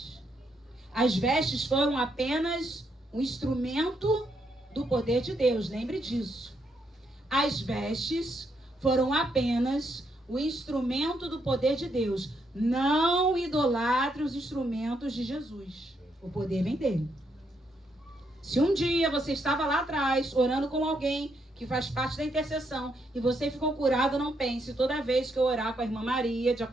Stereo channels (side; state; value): both; normal; correlation 0.77